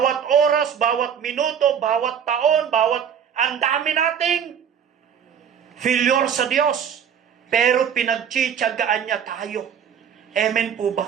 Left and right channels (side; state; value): left; quieter; 8.1 dB